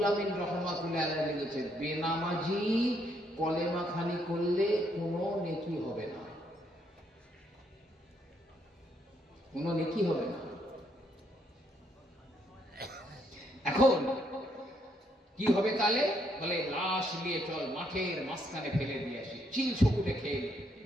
আমিন রহমাতুল্লাহ আলাইহি লিখেছেন, বেনামাজি কলেমা খানি করলে কোনো নেকি হবে না, কোনো নেকি হবে না। এখন কি হবে তাহলে? বলে লাশ নিয়ে চল মাঠের মাঝখানে ফেলে দিয়ে আসি, চিল ছকুটে খেয়ে।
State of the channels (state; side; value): normal; both; correlation 0.73